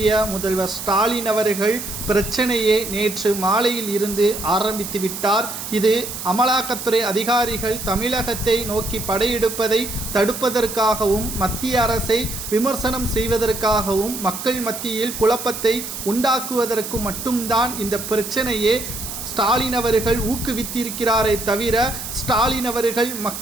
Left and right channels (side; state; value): right; noise; hiss, 8 dB below the sound